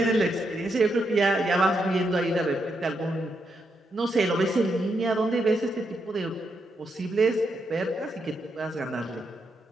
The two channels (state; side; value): normal; both; correlation 0.81